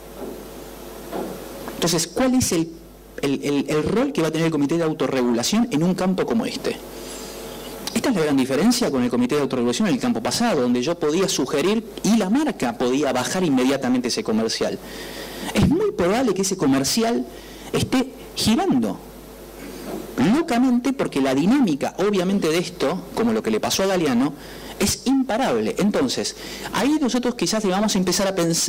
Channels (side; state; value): both; identical; correlation 1.00